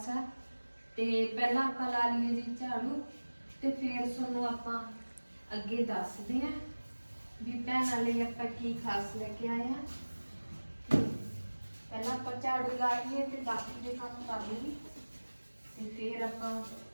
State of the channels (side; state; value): both; inverted; correlation -1.00